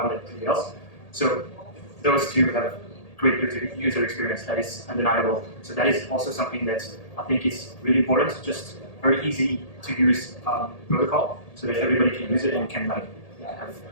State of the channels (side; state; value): right; late; 1.8 ms